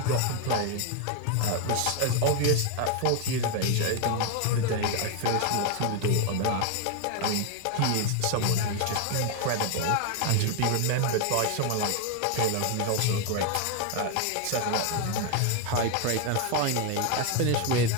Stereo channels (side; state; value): both; different; correlation 0.01